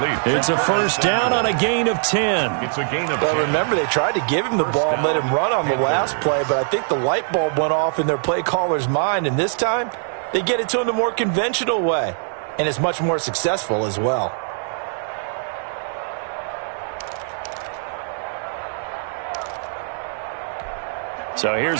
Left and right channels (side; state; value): left; silent; 64 dB below the other